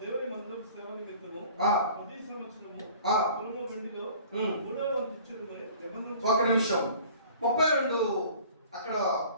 దేవుని మందిరం సేవ నిమిత్తము ప్రతి సంవత్సరము పొలము వెండిలో 3వ వంతు ఇచ్చేది నిబంధన. ఒక నిమిషం. 32 అక్కడ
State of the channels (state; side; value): inverted; both; correlation -0.48